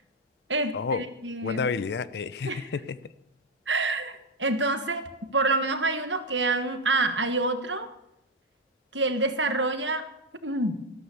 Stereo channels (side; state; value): both; normal; correlation 0.05